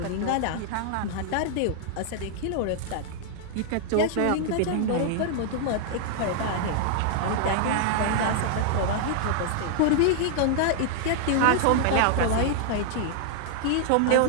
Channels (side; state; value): both; different; correlation 0.00